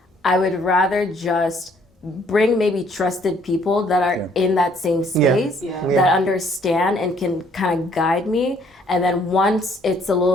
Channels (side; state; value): both; normal; correlation 0.63